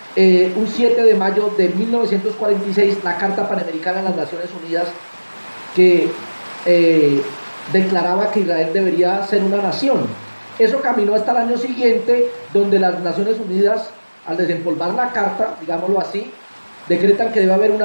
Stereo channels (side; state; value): both; inverted; correlation -1.00